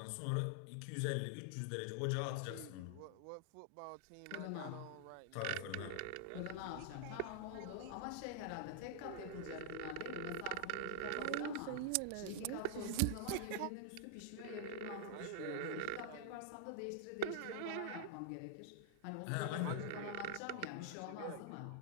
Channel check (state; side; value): different; both; correlation -0.01